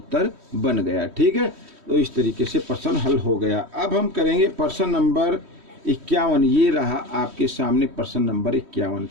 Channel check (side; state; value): left; late; 3.1 ms